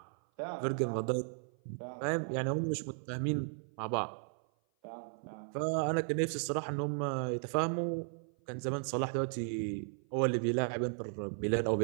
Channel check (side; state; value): left; silent; 54 dB below the other